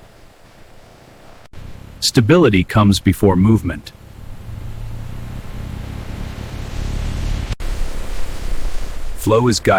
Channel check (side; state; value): both; identical; correlation 1.00